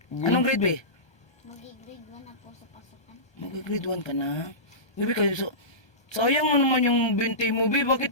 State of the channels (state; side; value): late; right; 1.3 ms